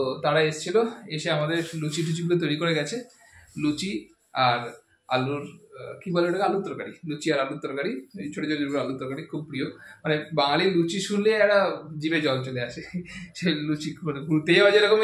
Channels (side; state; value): both; identical; correlation 1.00